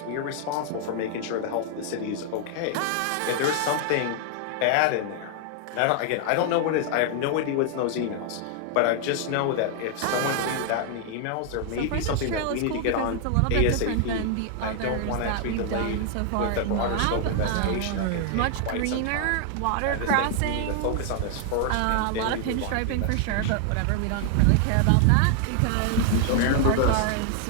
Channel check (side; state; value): both; different; correlation 0.00